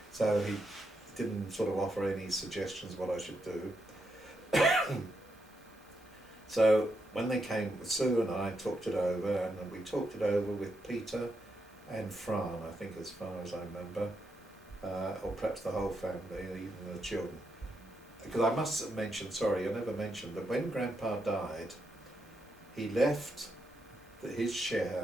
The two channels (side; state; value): both; normal; correlation 0.82